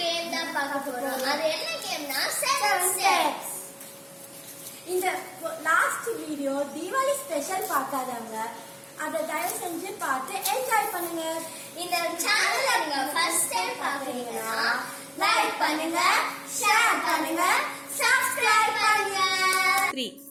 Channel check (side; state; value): both; identical; correlation 1.00